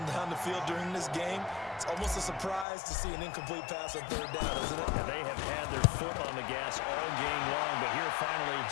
down the field during this game, it's almost a surprise to see an incomplete pass on 3rd down, isn't it? And they have had their foot on the gas all game long, but here finally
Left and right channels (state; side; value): drops out; right; at 2.7 s